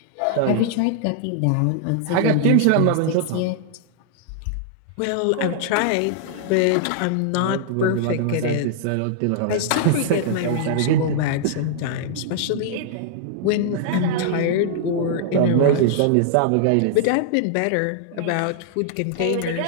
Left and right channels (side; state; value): both; different; correlation -0.01